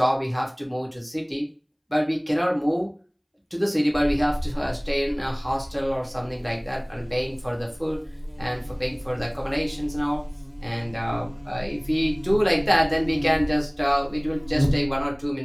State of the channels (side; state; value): both; identical; correlation 1.00